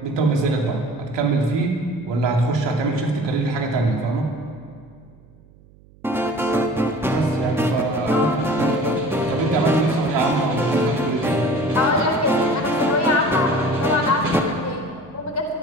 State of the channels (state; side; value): noise; right; hum, 27 dB below the sound